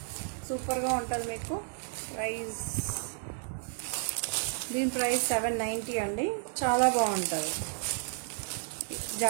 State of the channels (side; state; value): left; silent; 56 dB below the other